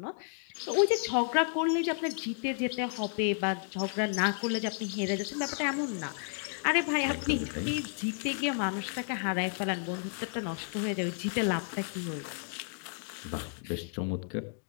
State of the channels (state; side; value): silent; right; 56 dB below the other